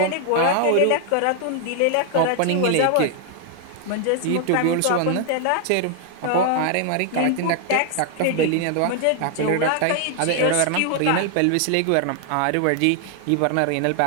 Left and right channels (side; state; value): both; different; correlation 0.00